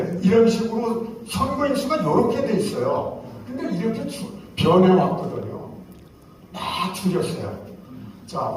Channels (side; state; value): both; identical; correlation 1.00